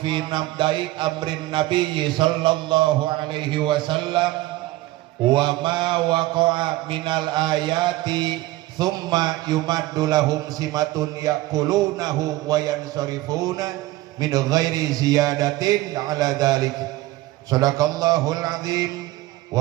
nabda'i amrin nabiyyi sallallahu alaihi wasallam wa ma waqa'a minal ayati thumma yumaddu lahum simatun yaqulunahu wa yansarifuna min ghairi ziyadatin ala dhalik. Sadaqallahul azim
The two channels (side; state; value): left; quieter; 17.8 dB